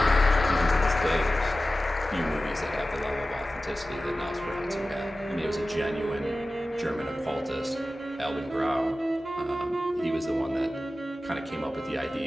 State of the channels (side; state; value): both; normal; correlation 0.95